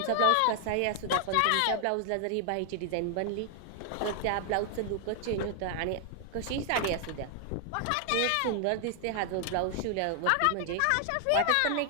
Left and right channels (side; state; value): both; different; correlation 0.00